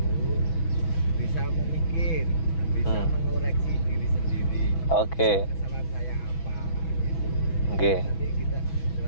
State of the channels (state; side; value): late; right; 6.1 ms